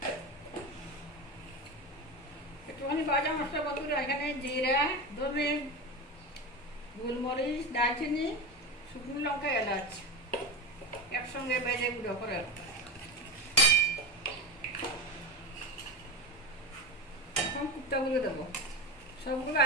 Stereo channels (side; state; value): both; normal; correlation 0.22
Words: একটুখানি ভাজা মশলা বন্ধুরা। এখানে জিরা, ধনে, গোলমরিচ, দারচিনি, শুকনো লঙ্কা, এলাচ একসঙ্গে ভেজে গুঁড়ো করে। এখন কুপ্তাগুলো দেবো, সবগুলো